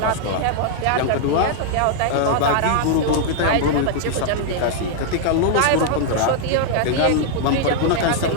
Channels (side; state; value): both; different; correlation 0.00